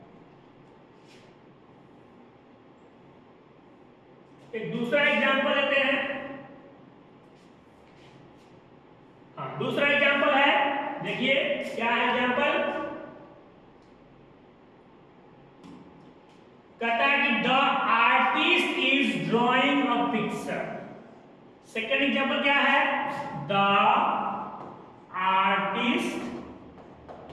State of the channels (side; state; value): both; identical; correlation 1.00